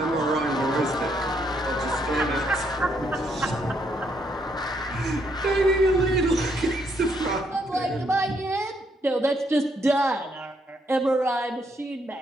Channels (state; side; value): normal; both; correlation 0.73